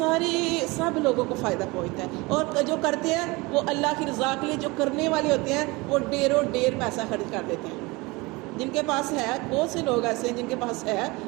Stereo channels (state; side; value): quieter; left; 24.2 dB